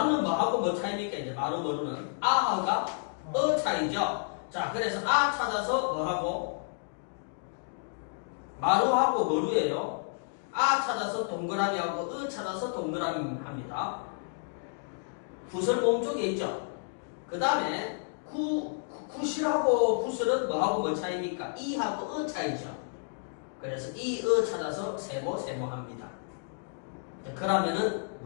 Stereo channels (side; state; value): right; silent; digital silence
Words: 뭐하고 뭐 차이입니까? 이제 마루 머루는 아하가 어 차이죠. 자, 그래서 아 찾아서 뭐하고 마루하고 머루예요. 아 찾아서 동그라미하고 으 찾아서 동그라미 합니다. 구슬 모음 쪽에 있죠. 그 다음에 굿이하고 구슬은 뭐하고 뭐 차이입니까? 이하고 어 차이죠. 그래서 이, 어 찾아서 세모 합니다. 그러면은